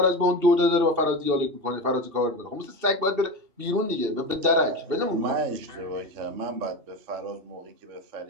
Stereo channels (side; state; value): left; late; 2.7 ms